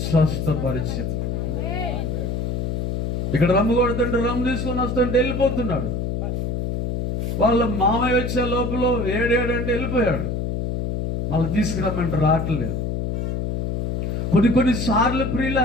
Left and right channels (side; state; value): left; noise; hum, 1 dB below the sound